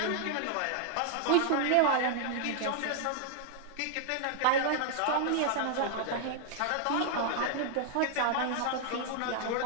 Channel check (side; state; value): both; different; correlation 0.00